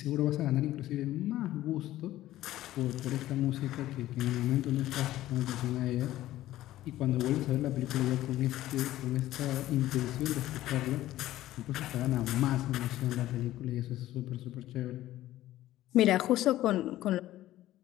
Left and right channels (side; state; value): right; quieter; 14.7 dB